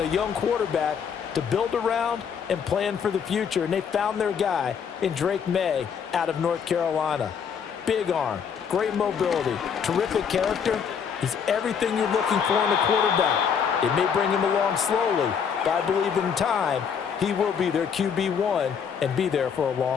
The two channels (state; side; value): quieter; right; 7.0 dB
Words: young quarterback to build around and plan for the future. And they found their guy in Drake May out of North Carolina. Big arm, great mobility, terrific character. He's everything you're looking for in a quarterback. It may bring him along slowly, but I believe in time he will be their QB1 and be there for a